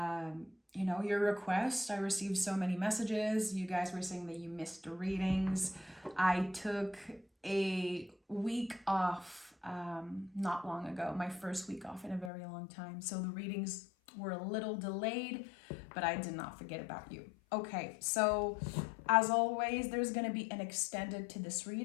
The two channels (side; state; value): right; drops out; at 12.3 s